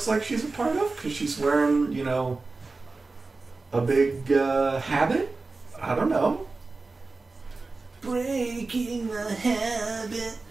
like she's a part of? Because she's wearing, you know, a big habit? I don't know. Breaking the habit.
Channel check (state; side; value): quieter; left; 3.7 dB